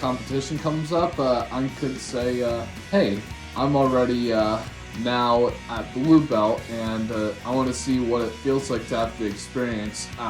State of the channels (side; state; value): both; identical; correlation 1.00